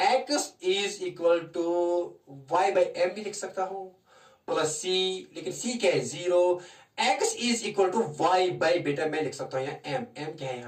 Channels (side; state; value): both; identical; correlation 1.00